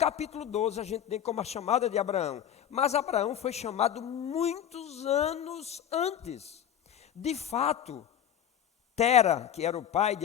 12 a gente tem como a chamada de Abraão, mas Abraão foi chamado muitos anos antes. De fato, Tera, que era o pai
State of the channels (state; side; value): quieter; right; 9.9 dB